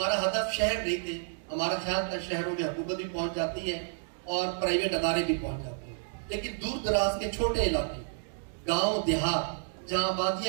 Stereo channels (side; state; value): left; silent; digital silence